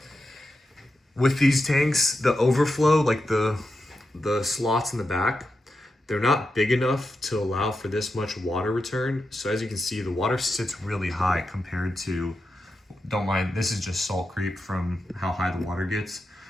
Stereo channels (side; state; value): both; normal; correlation 0.88